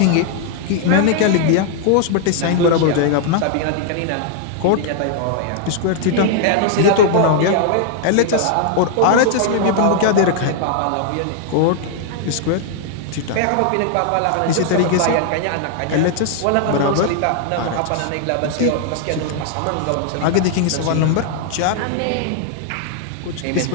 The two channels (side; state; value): both; different; correlation 0.00